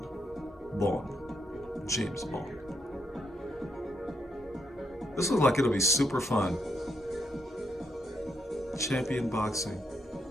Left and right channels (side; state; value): both; normal; correlation 0.79